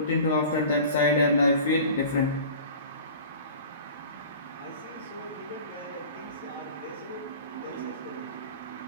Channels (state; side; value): inverted; both; correlation -0.40